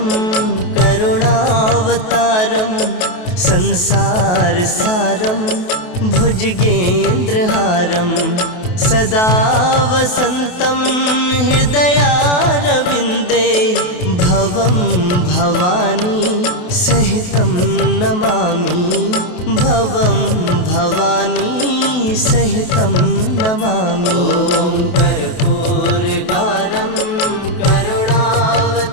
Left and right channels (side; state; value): right; late; 28 ms